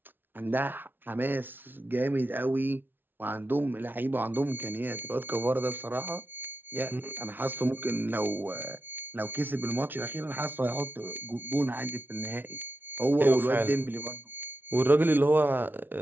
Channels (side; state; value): left; late; 0.097 ms